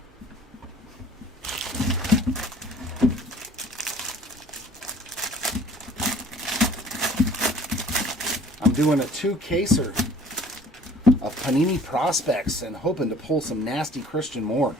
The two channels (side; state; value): both; normal; correlation 0.52